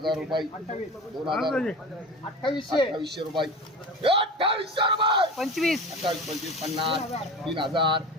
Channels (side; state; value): both; normal; correlation 0.32